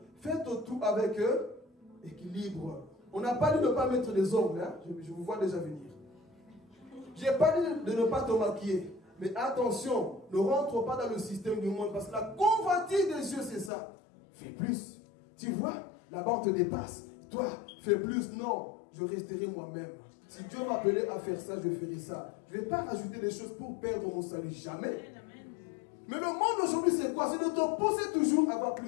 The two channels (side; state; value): right; drops out; at 13.7 s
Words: Faites tout avec équilibre. On n'a pas dit de ne pas mettre des ongles. Hein? Je vous vois déjà venir. Je n'ai pas dit de ne pas te maquiller. Mais attention, ne rentre pas dans le système du monde. Parce que la convoitise des yeux, c'est ça. Fais plus. Tu vois, là-bas on te dépasse. Toi, fais plus. Non, je resterai moi-même. Si Dieu m'appelait à faire ça, je ferai ça. Je ne vais pas rajouter des choses pour perdre mon salut. Jamais. Mais le monde aujourd'hui, c'est quoi? C'est de te pousser toujours à avoir